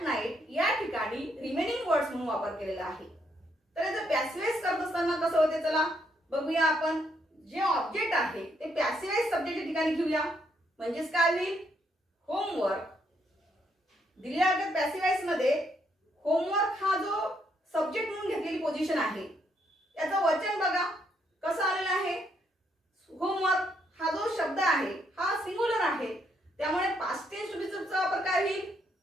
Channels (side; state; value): both; normal; correlation 0.74